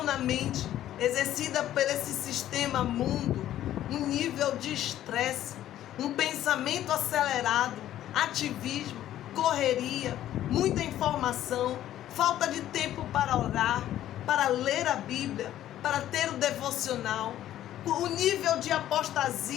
na mente, exercida por esse sistema mundo, um nível de estresse, um pensamento acelerado, ativismo, correria, muita informação, falta de tempo para orar, para ler a Bíblia, para ter o devocional. o nível de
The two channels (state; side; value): quieter; right; 12.5 dB